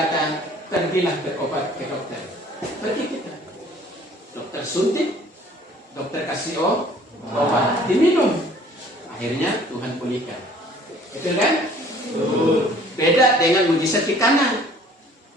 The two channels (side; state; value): both; normal; correlation 0.54